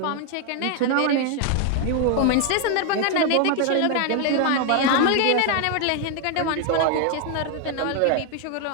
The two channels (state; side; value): different; both; correlation 0.00